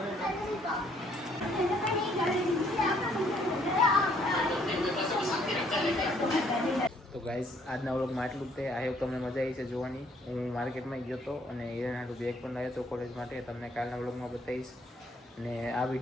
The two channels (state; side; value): normal; both; correlation 0.65